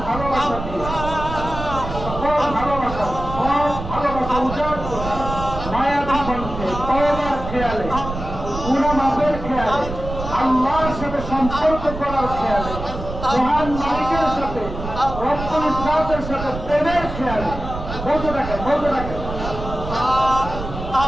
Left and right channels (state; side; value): noise; right; rumble, 8 dB below the sound